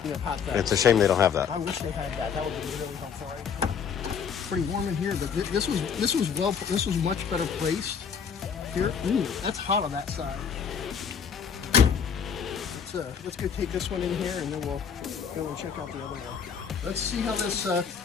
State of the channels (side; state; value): right; quieter; 6.9 dB